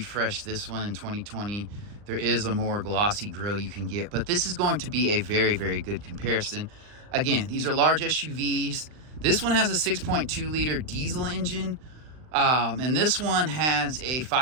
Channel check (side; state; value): left; late; 39 ms